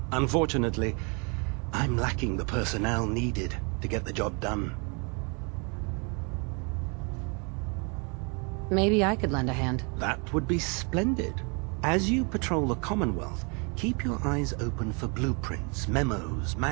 Unfortunately, I'm lacking the personnel needed to get the job done. Maybe I could lend a hand. That would be splendid. As you patrol the Commonwealth, keep your eyes open for blueprints, memos,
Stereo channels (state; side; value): quieter; left; 33.7 dB